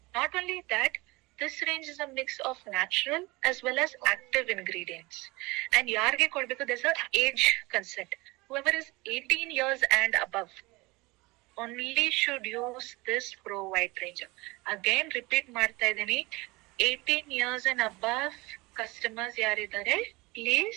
Not only that, this range is a mix of natural as well as active ingredients. And ಯಾರಿಗೆ ಕೊಡ್ಬೇಕು, there's a age consent. Whoever is 18 years and above only should use this Pro White range. Again repeat ಮಾಡ್ತಾ ಇದೀನಿ, 18 years and above customers ಯಾರಿದ್ದಾರೆ,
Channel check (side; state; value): left; quieter; 23.3 dB